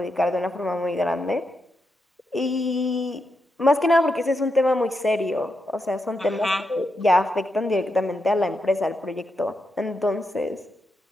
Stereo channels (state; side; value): normal; both; correlation 0.84